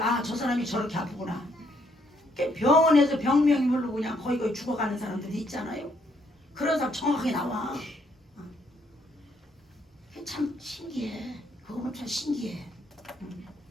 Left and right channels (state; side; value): normal; both; correlation 0.71